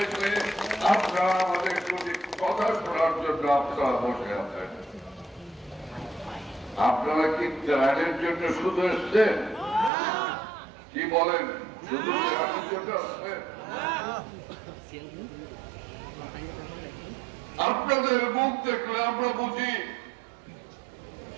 আপনারা আমাদের প্রতি কথা শোনার জন্য আপনারা বসে আছেন। আপনারা কি ত্রাণের জন্য শুধু এসছেন? কি বলেন, শুধু ত্রাণের জন্য আসছেন? আপনাদের মুখ দেখলে আমরা বুঝি,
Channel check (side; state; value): left; drops out; at 9.9 s